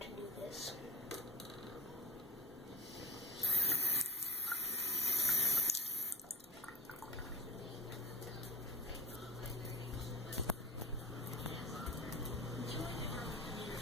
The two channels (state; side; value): normal; both; correlation 0.33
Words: to do this.